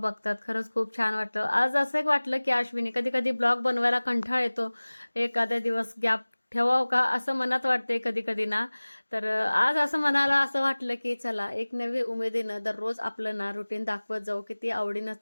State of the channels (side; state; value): both; inverted; correlation -1.00